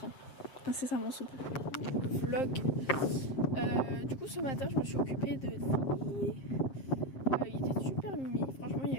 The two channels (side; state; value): right; late; 7.5 ms